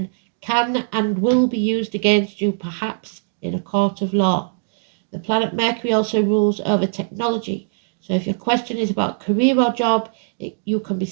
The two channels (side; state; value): left; silent; digital silence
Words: can and will be used against you, perhaps in a court of law. The planet Mercury also rules over technology. So if your question is about career or job, you can be